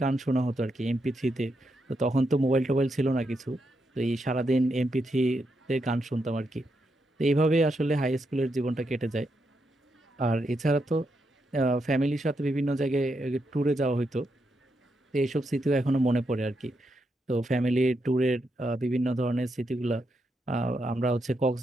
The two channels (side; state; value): both; normal; correlation 0.82